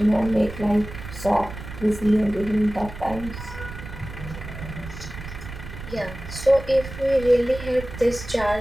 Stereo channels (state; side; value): noise; right; rumble, 11 dB below the sound